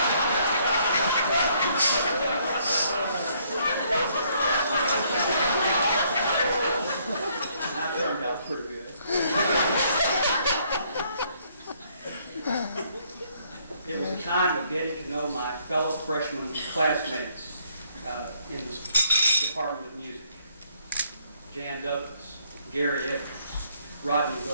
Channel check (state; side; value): inverted; both; correlation -0.67